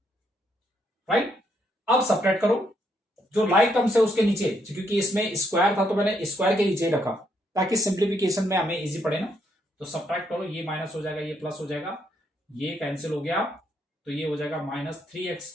राइट। अब सब्ट्रैक्ट करो, जो लाइक टर्म्स है उसके नीचे, क्योंकि इसमें स्क्वायर था तो मैंने स्क्वायर के नीचे रखा ताकि सिंप्लीफिकेशन में हमें इजी पड़े ना। तो सब्ट्रैक्ट करो, ये माइनस हो जाएगा, ये प्लस हो जाएगा, ये कैंसिल हो गया, तो ये हो जाएगा माइनस 3x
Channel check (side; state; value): both; normal; correlation 0.74